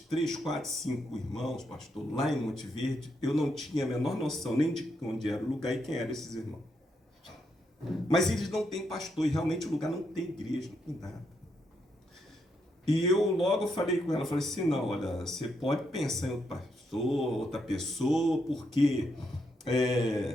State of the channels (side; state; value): both; normal; correlation 0.79